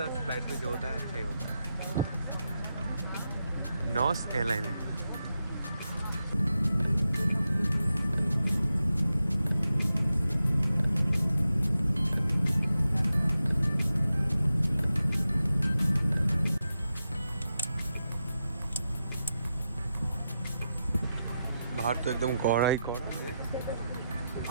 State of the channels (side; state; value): both; inverted; correlation -0.88